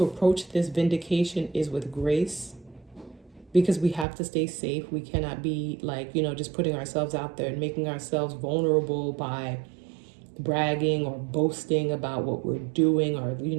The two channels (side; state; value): left; drops out; at 4.0 s